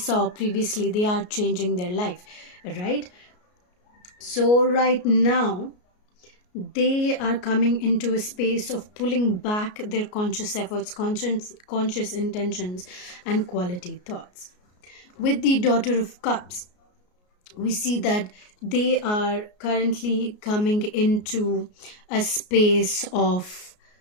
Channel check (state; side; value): late; right; 33 ms